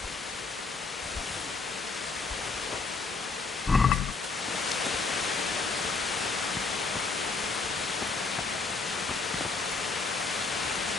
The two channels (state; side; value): quieter; right; 4.2 dB